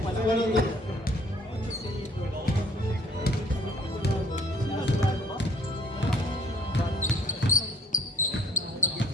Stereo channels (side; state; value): both; normal; correlation 0.58